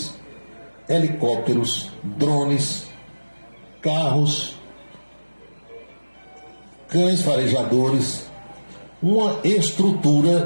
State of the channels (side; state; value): both; inverted; correlation -1.00